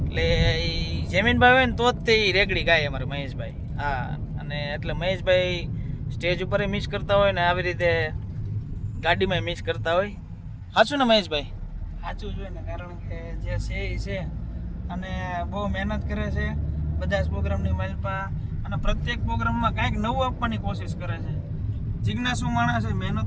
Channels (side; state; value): both; identical; correlation 1.00